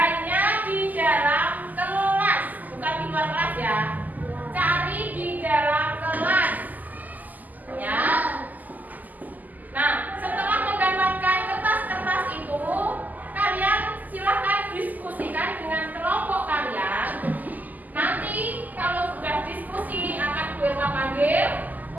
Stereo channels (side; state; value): left; late; 0.082 ms